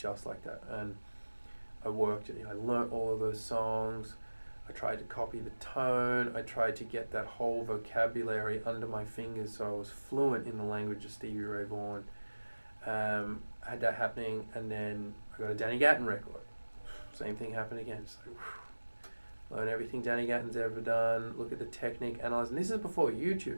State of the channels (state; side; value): inverted; both; correlation -1.00